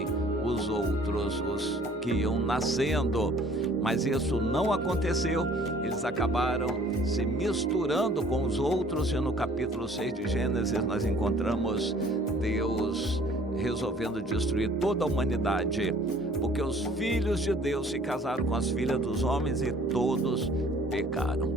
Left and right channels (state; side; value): normal; both; correlation 0.54